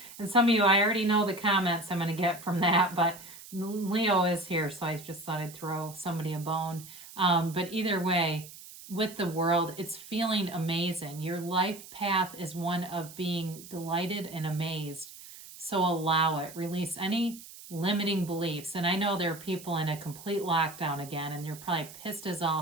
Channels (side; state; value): right; noise; hiss, 16 dB below the sound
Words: And some of you, I already know the comments I'm going to get from that, but Leo is here, so I just thought I'd throw somebody a bone. But either way, with the world, it's feeling amazing. Your life path is one of being delighted and amazed. So allow it. Release any limiting beliefs. And I know there are people in a complete lockdown again, and they're probably pissed as